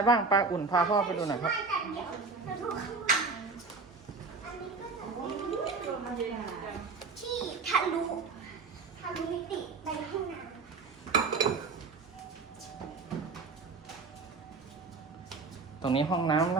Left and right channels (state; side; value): quieter; left; 4.2 dB